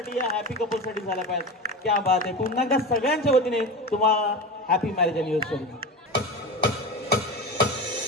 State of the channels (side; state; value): both; normal; correlation 0.25